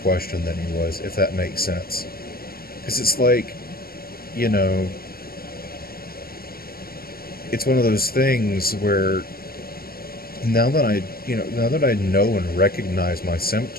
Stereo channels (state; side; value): late; right; 0.44 ms